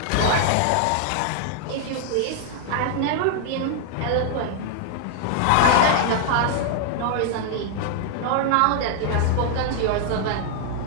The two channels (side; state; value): both; different; correlation 0.00